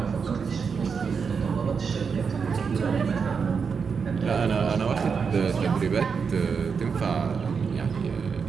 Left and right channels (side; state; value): left; quieter; 5.8 dB